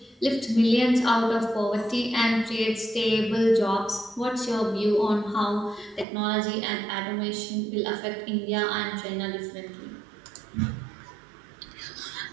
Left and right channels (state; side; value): drops out; left; at 6.1 s